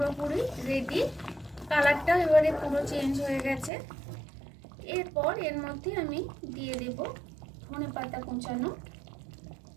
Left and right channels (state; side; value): drops out; left; at 3.7 s